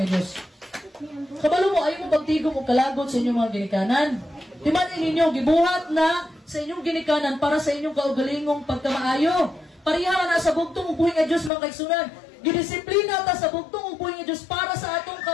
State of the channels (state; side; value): drops out; right; at 11.5 s